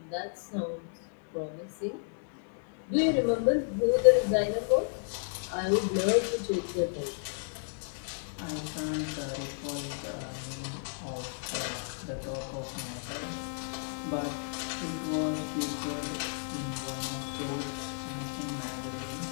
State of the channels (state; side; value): silent; right; digital silence